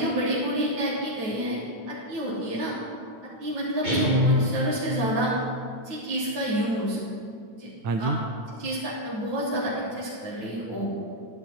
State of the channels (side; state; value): left; late; 9.1 ms